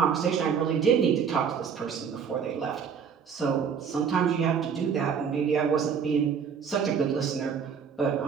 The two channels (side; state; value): left; quieter; 6.8 dB